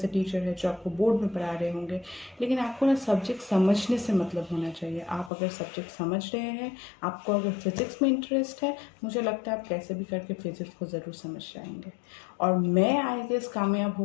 टीचर हैं जो आपको बोर्ड में पढ़ा रहे होंगे, लेकिन आपको ना सब्जेक्ट समझने से मतलब होना चाहिए। आप अगर सब्जेक्ट समझ रहे हैं, आपको अगर फिज़िक्स में इंटरेस्ट है, मुझे लगता है आप कैसे भी करके फिज़िक्स को ज़रूर समझ जाएंगे। और मैं आई गेस कामयाब हो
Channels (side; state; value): right; drops out; at 5.3 s